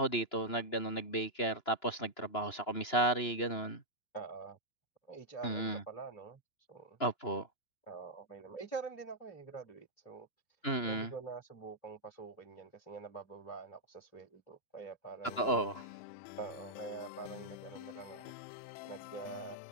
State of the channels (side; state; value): right; late; 2.9 ms